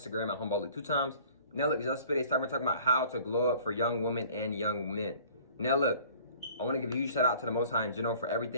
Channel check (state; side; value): inverted; both; correlation -0.51